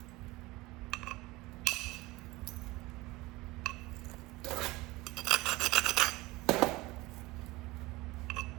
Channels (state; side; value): quieter; left; 20.9 dB